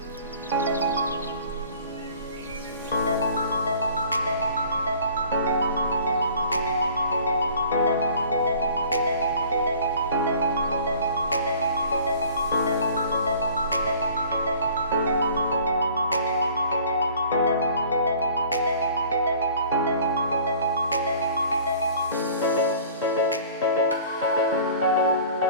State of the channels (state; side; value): inverted; both; correlation -0.50